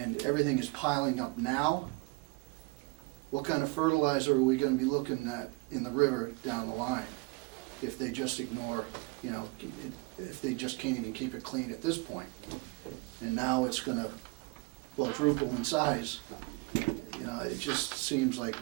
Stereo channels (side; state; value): left; quieter; 26.5 dB